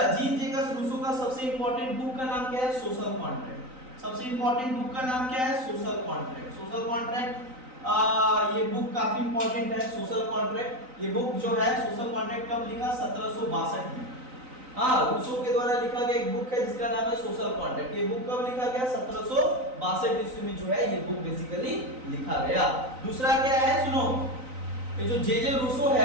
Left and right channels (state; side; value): late; left; 3.9 ms